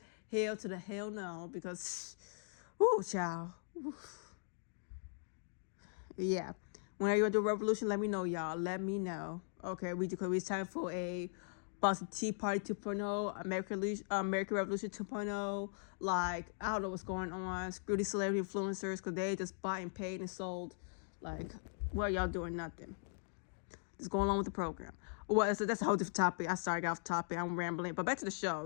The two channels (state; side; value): silent; right; digital silence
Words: to the hell no, because, child. Yeah. Whenever you want to do a revolution, let me know, y'all. Let me know. Okay, it's time for a Boston Tea Party 2.0, American Revolution 2.0. Like, I don't know what's going on. Screw these celebrity influencers because they just bought and paid and sold. Like, what are y'all doing? Nothing. Just going along with the program. Well, so that's a whole different topic. I started off topic. I'm rambling. But back to the show.